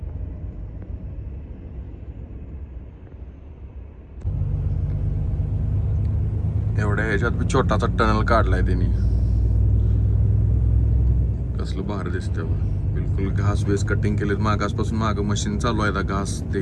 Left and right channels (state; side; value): identical; both; correlation 1.00